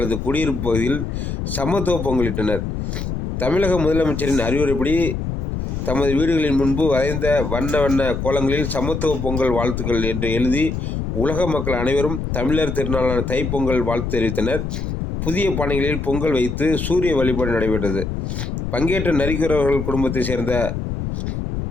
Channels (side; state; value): left; noise; rumble, 3 dB below the sound